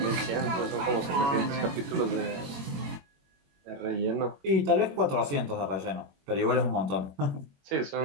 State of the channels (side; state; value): left; late; 21 ms